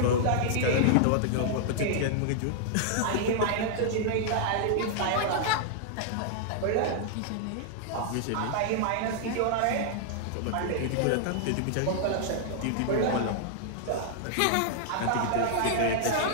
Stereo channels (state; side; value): different; both; correlation -0.01